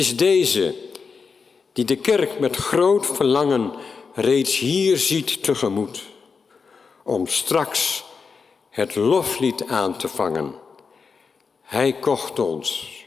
deze die de kerk met groot verlangen reeds hier ziet tegemoet, om straks het loflied aan te vangen. Hij kocht ons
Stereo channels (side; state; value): right; quieter; 5.2 dB